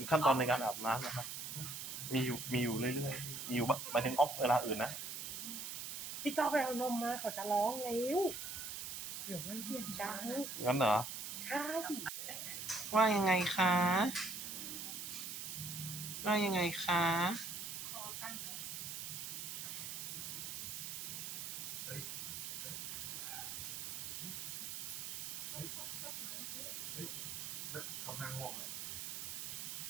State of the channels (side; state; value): right; noise; hiss, 5 dB below the sound